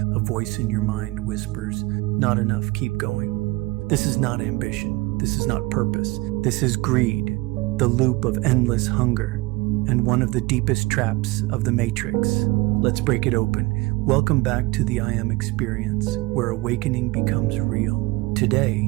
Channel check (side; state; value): left; quieter; 21.8 dB